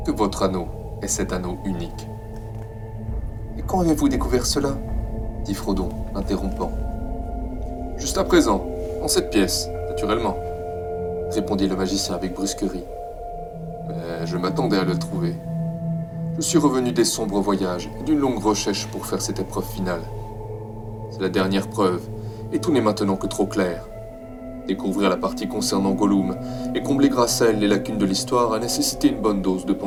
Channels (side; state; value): both; identical; correlation 1.00